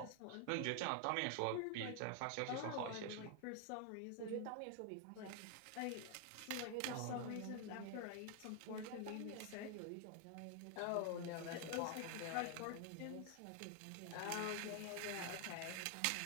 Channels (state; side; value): different; both; correlation 0.00